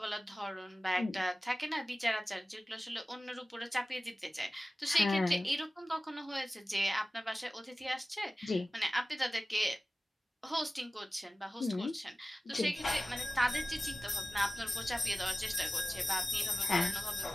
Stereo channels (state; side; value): normal; both; correlation 0.96